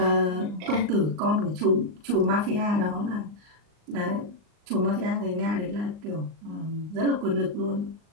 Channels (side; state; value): left; late; 39 ms